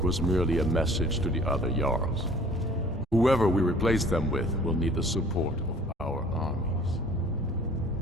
was merely a message to the other Jarls. Whoever we replace them with will need the support of our armies.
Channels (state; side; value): normal; both; correlation 0.51